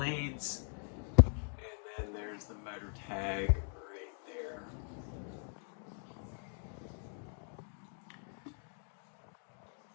and then there's the motor tag right there.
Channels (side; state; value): right; silent; 51 dB below the other